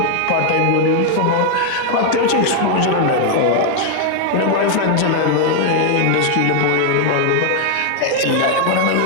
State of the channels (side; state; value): both; different; correlation 0.00